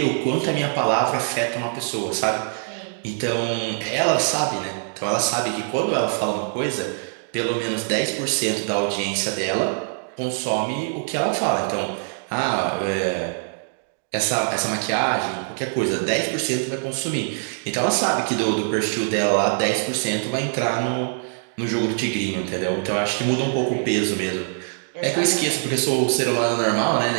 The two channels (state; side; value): silent; left; digital silence